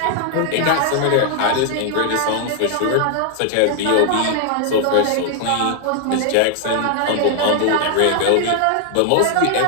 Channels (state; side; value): different; both; correlation 0.00